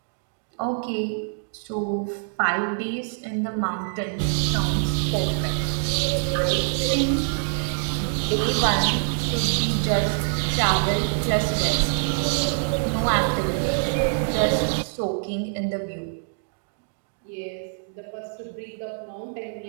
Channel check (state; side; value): silent; left; digital silence